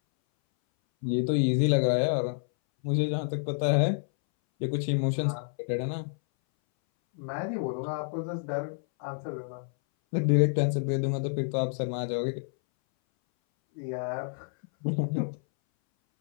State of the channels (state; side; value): silent; right; 59 dB below the other